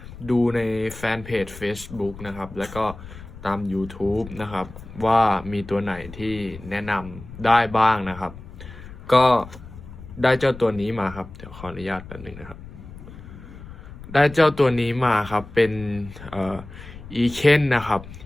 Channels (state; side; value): noise; left; rumble, 15 dB below the sound